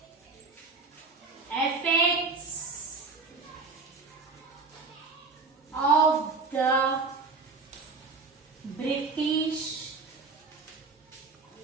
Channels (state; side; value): quieter; left; 4.2 dB